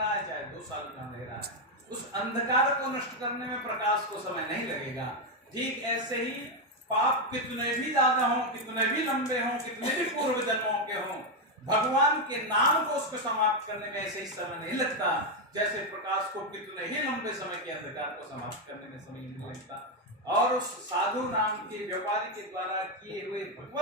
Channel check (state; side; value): normal; both; correlation 0.05